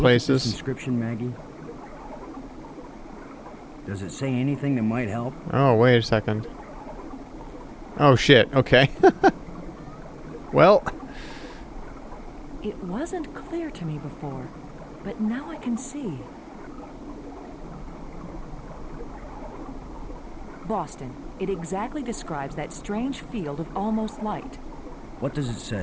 look at this places. inscription, Maggie? Does it say anything that might help? Oh, wait a second. Oh, shit. Okay. Well, It wasn't clear to me before, but now I can see. Boston. It exactly describes that strange field of almost light. What does it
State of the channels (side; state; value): both; identical; correlation 1.00